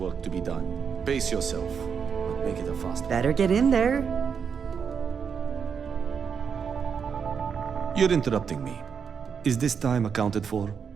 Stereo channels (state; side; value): quieter; left; 6.6 dB